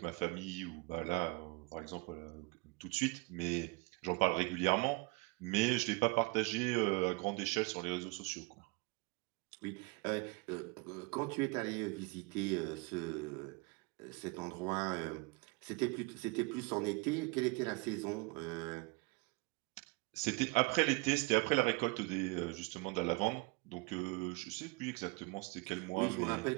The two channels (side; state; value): left; quieter; 25.4 dB